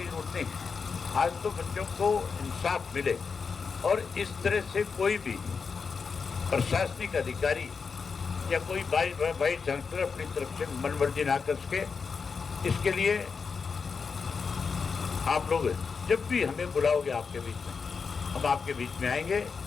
जरूरत नहीं, आज तो बच्चों को इंसाफ मिले और इस तरह से कोई भी प्रशासनिक अधिकारी या कोई वाइस चांसलर अपनी तरफ से मनमर्जी ना कर सके। इसके लिए आप लोग जब भी हमें बुलाओगे आपके बीच में, हम आपके बीच में आएंगे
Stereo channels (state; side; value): quieter; right; 5.4 dB